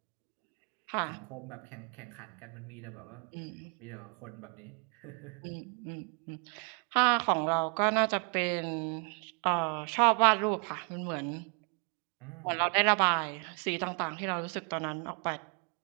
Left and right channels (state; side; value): quieter; left; 38.1 dB